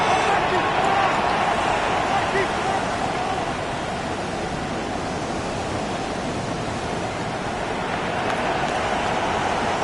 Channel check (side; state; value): both; identical; correlation 1.00